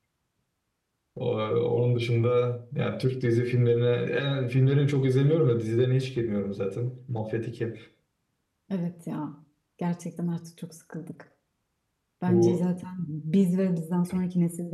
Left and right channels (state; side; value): identical; both; correlation 1.00